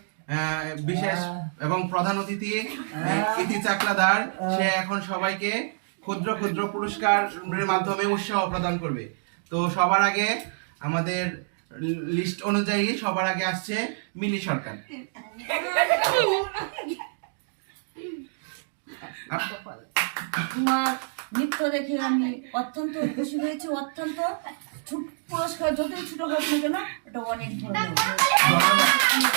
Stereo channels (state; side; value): silent; left; digital silence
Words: বিশেষ এবং প্রধান অতিথি ইতি চাকলাদার, সে এখন সবাইকে ক্ষুদ্র ক্ষুদ্র পুরস্কারের মাধ্যমে উৎসাহ প্রদান করবে। তো সবার আগে আমাদের লিস্ট অনুযায়ী সবার আগে আসছে মিলি সরকার। তোমার নৃত্য দেখে আমি অত্যন্ত খুশি হয়েছি। অত্যন্ত পুরস্কার যতই ছোট হোক না কেন ওটা অনেক ভালো।